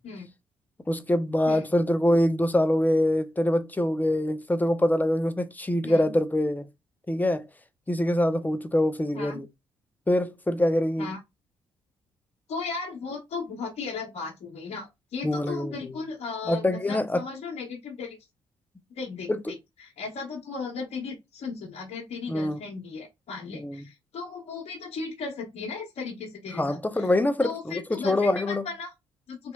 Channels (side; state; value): both; normal; correlation 0.89